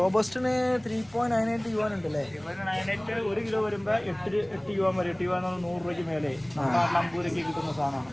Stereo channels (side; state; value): left; noise; hum, 29 dB below the sound